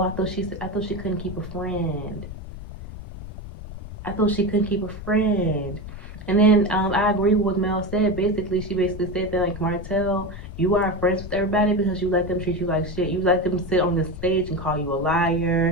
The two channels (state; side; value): noise; left; rumble, 11 dB below the sound